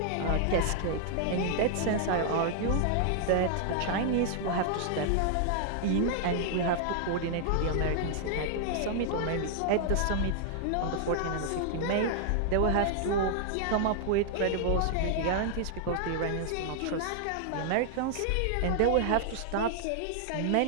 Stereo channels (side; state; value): both; different; correlation 0.00